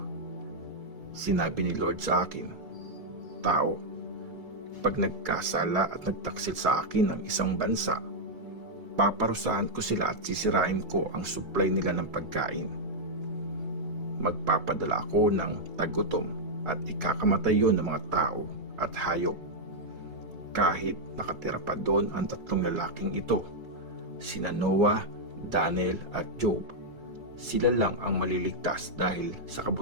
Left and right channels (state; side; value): late; left; 3.8 ms